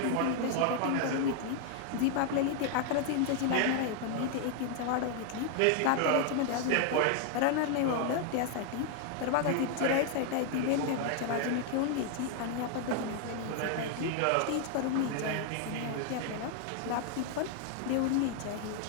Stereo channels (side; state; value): both; different; correlation 0.00